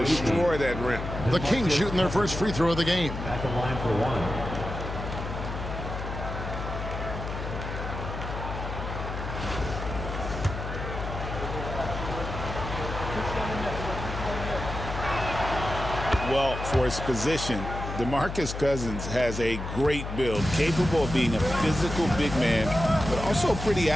that rim. The Kings shooting their first free throw of the game. At the line for one. Well, for his position, DeMarcus Cousins has a great build, capable of being a physical big man, but also pretty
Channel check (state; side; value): noise; left; hum, 6 dB below the sound